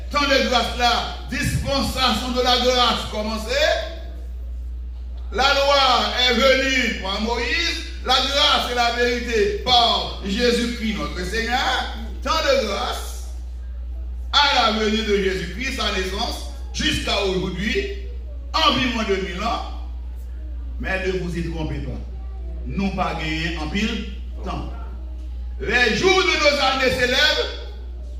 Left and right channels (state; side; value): identical; both; correlation 1.00